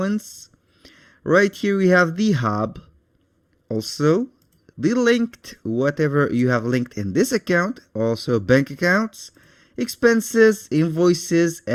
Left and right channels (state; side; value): identical; both; correlation 1.00